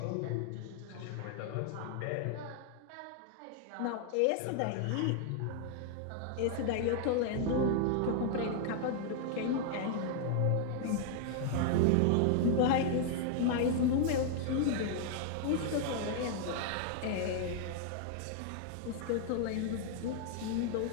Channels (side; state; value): both; different; correlation 0.00